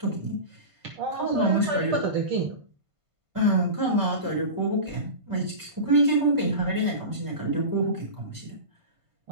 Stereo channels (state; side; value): late; left; 1.5 ms